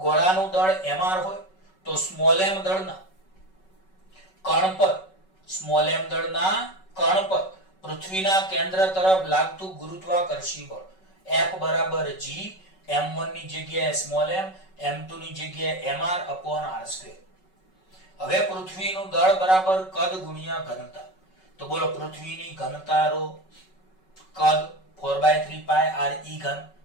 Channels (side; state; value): right; late; 5.3 ms